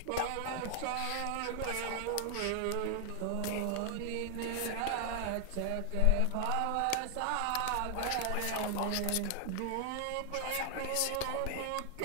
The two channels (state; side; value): different; both; correlation 0.00